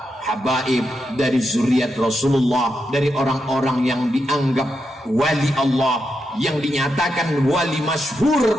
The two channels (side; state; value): both; normal; correlation 0.85